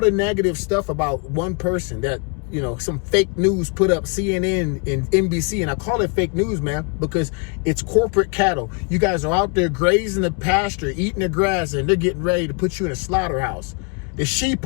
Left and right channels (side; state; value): right; quieter; 33.5 dB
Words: negative stuff about one person that, you know, some fake news put up, CNN and NBC. And I call it fake news, man, because it's corporate cattle. You guys are out there grazing the pasture, eating the grass, and they're getting ready to put you in a slaughterhouse. The